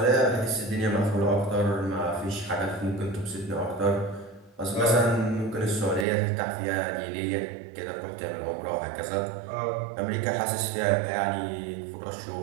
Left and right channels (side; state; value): left; drops out; at 6.1 s